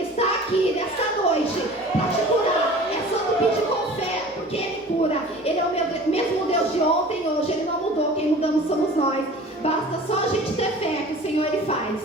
está aqui nessa noite para te curar. É só tu pedir com fé, porque Ele cura. Ele é o mesmo Deus de ontem e hoje. Ele não mudou, quem mudamos somos nós. Basta só a gente ter fé que o Senhor Ele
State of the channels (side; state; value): both; normal; correlation 0.42